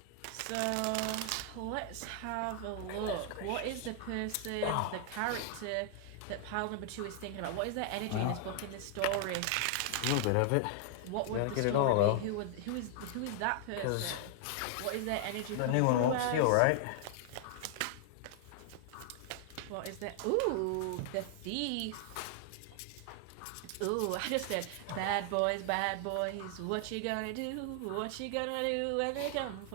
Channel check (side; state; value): both; different; correlation 0.00